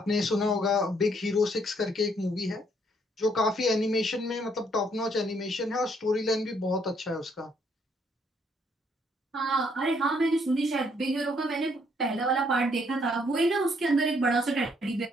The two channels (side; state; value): both; normal; correlation 0.69